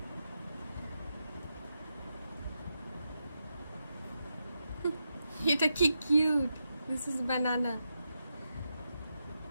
এটা কি কিউট। দিস ইজ বানানা।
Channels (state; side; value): inverted; both; correlation -0.86